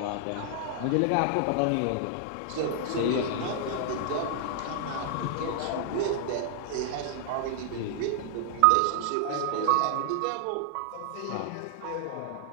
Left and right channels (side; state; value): both; different; correlation -0.01